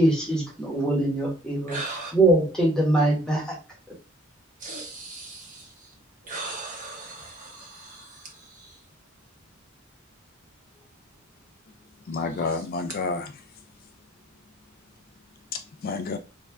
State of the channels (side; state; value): both; normal; correlation 0.57